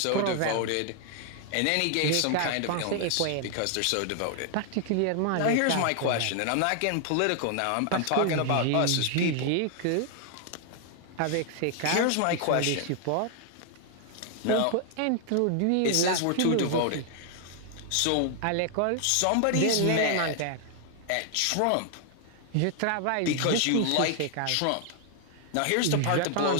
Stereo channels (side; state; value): both; different; correlation 0.00